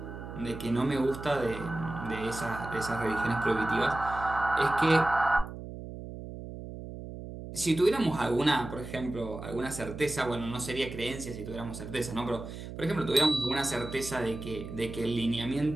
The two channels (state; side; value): noise; right; hum, 10 dB below the sound